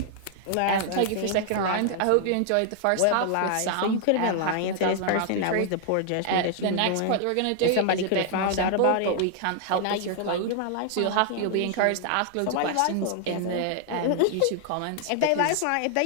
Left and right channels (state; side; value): different; both; correlation 0.00